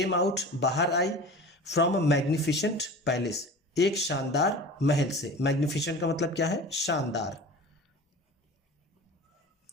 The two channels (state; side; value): normal; both; correlation 0.37